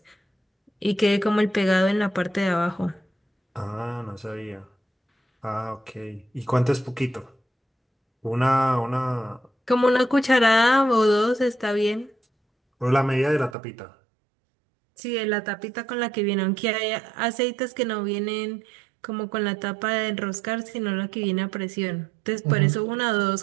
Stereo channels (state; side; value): drops out; left; at 13.6 s